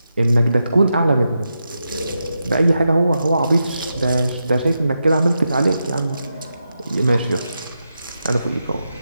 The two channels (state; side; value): inverted; both; correlation -0.87